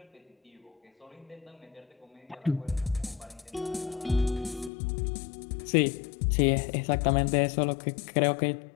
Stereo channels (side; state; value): right; drops out; at 4.7 s